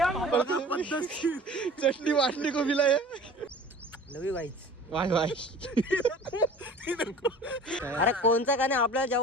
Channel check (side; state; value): both; normal; correlation 0.43